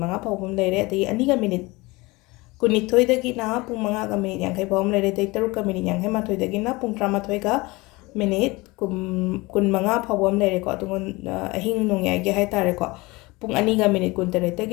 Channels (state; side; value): quieter; right; 23.1 dB